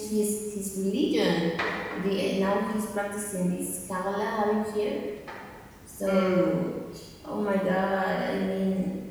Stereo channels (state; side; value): identical; both; correlation 1.00